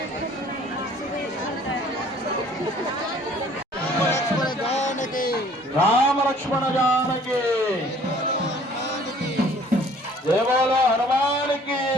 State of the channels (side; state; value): both; normal; correlation 0.55